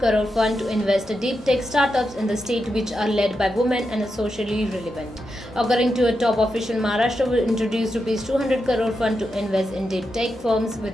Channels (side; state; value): both; normal; correlation 0.87